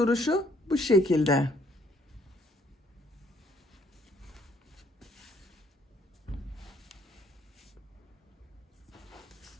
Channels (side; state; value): both; normal; correlation 0.65